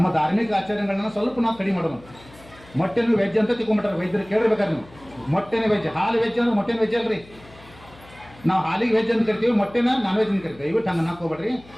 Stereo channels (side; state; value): left; noise; hum, 23 dB below the sound